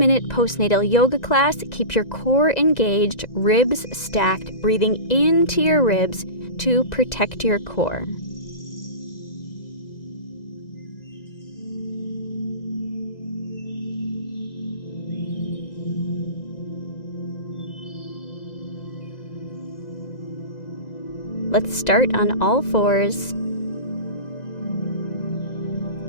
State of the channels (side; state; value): right; late; 2.0 ms